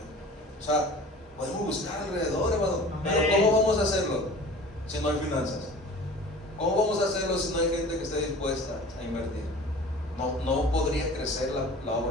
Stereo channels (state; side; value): normal; both; correlation 0.42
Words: O sea, podemos buscar alrededor, hermano. Pero ¿cómo vamos a hacerlo si no hay finanzas? ¿Cómo vamos a hacerlo si no hay gente que esté dispuesta a invertir? no podría crecer la